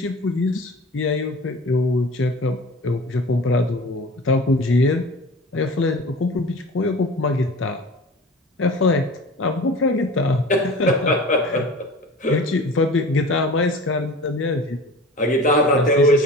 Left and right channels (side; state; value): both; normal; correlation 0.38